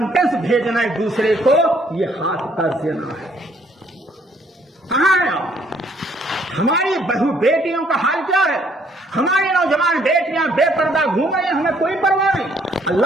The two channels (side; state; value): both; normal; correlation 0.65